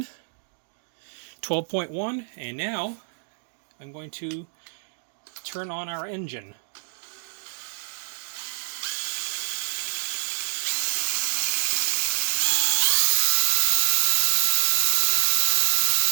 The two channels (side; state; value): left; silent; digital silence